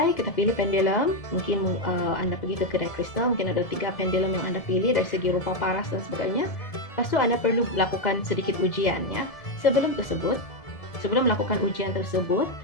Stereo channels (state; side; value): late; right; 1.7 ms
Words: kita pilih pendulum. Mungkin anda pergi ke kedai kristal, mungkin ada 3 pendulum yang anda pilih dari segi rupa, paras dan sebagainya. Lepas tu anda perlu lakukan sedikit ujian ya. Sebelum melakukan ujian tersebut,